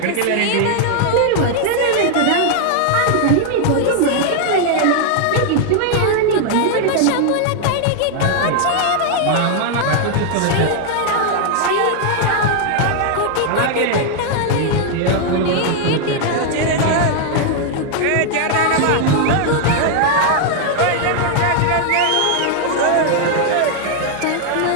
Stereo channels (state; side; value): different; both; correlation 0.00